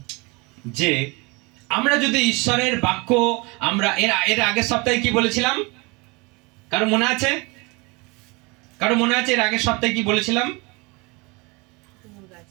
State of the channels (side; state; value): left; quieter; 27.2 dB